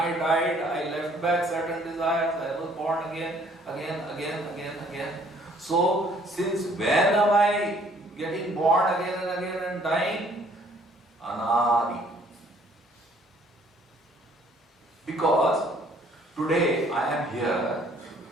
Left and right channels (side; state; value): both; normal; correlation 0.60